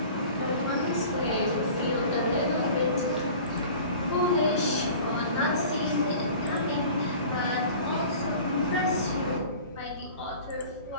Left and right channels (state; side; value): inverted; both; correlation -0.43